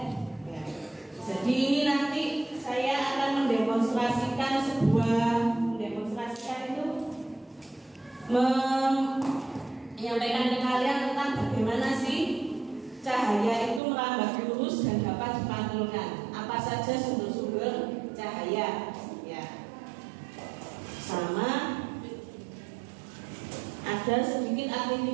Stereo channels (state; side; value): drops out; left; at 13.8 s